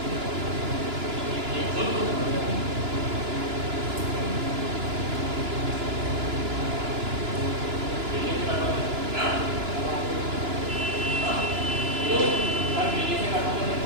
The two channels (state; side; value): late; left; 2.9 ms